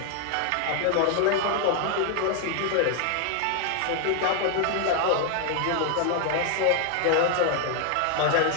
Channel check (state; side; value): different; both; correlation 0.00